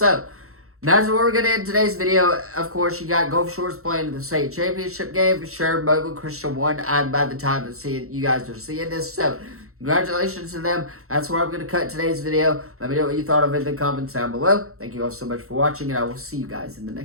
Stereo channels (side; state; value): left; late; 0.63 ms